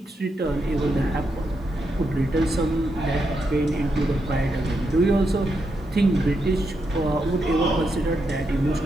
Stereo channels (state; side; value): normal; both; correlation 0.83